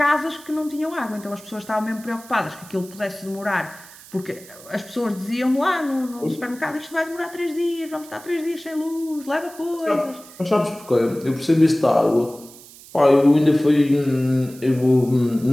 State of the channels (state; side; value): noise; right; hiss, 20 dB below the sound